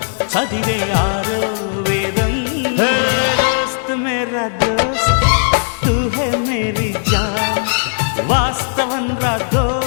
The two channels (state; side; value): silent; right; 68 dB below the other